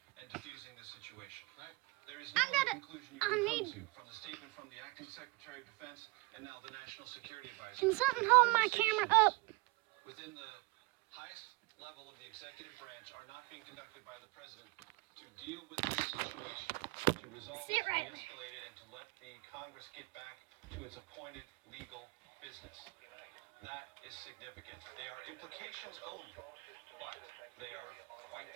and diffusing the situation. Right. There is no conclusion you can come to from the statement from the acting Secretary of Defense and now the National Security Advisor. Can something hold my camera up? Within the highest level of the executive branch are not being conducted by the president to deal with this situation, to resolve it, to de-escalate it, and to let the Congress get back to its appointed legal business. That is significant. They are implications only, but they are quite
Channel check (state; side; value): quieter; left; 24.6 dB